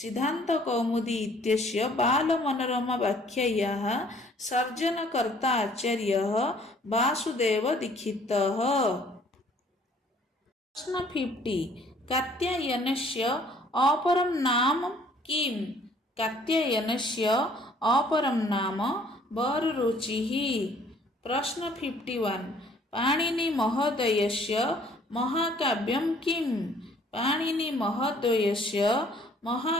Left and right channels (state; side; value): normal; both; correlation 0.58